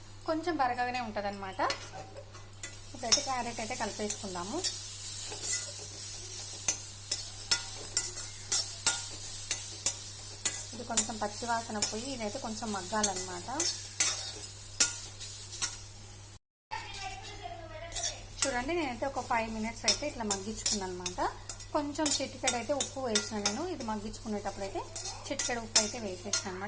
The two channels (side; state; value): both; identical; correlation 1.00